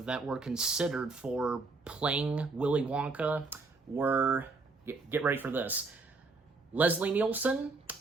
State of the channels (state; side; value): quieter; left; 3.8 dB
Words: that were considered for playing Willy Wonka were, get ready for this, Leslie Nielsen